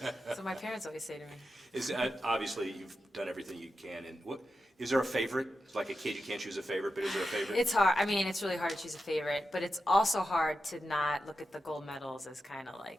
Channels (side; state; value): both; normal; correlation 0.89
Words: know. So my parents always say to me. Obviously, you've done everything you can. And what is there a favorite? It's like a kid, you can't choose a favorite, but is there a favorite? It's hard. I mean, it's really hard to choose a favorite, but it's also hard to not look at the gold medals as kind of